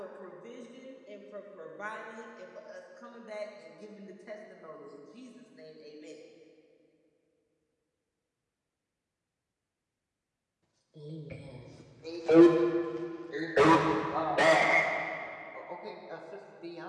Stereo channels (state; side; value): identical; both; correlation 1.00